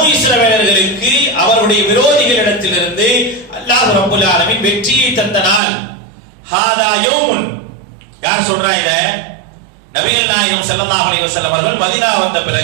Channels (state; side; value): drops out; left; at 5.6 s